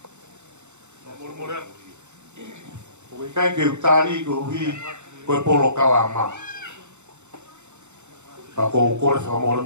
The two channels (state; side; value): late; left; 0.83 ms